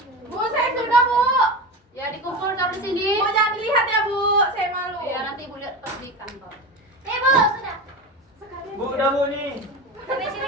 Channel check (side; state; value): both; normal; correlation 0.25